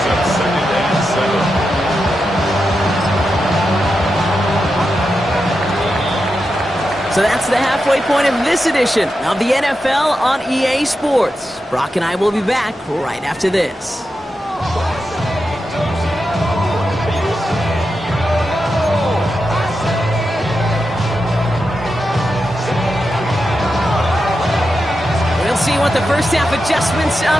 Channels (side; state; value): both; normal; correlation 0.88